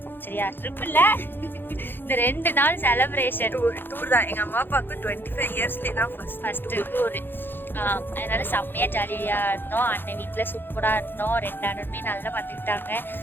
சரியா? ட்ரிப் இல்ல, இந்த 2 நாள் செலிப்ரேஷன் டூர் தான். எங்க அம்மா அப்பாவுக்கு 25 இயர்ஸ்ல தான் ஃபர்ஸ்ட் டூர். அதனால செம்மையா ஜாலியா இருந்தோம். அண்ணன் வீட்டுல சூப்பரா இருந்தோம். 2 அண்ணனுமே நல்லா பார்த்துக்கிட்டாங்க.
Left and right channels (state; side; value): late; right; 0.099 ms